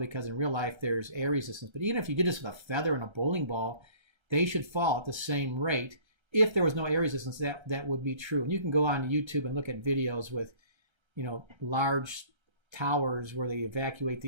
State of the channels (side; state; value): left; late; 1.3 ms